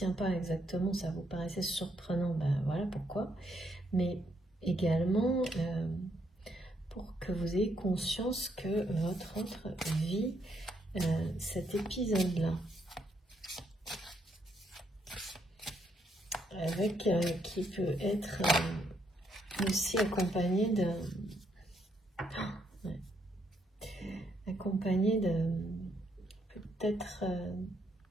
pas exactement, ça vous paraissait surprenant, ben voilà pourquoi. Mais également pour que vous ayez conscience que votre autre vit cet épisode-là. Avec qui peut être aussi accompagné de peut-être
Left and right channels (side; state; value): both; normal; correlation 0.75